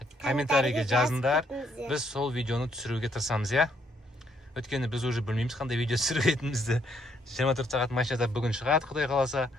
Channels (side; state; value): both; normal; correlation 0.71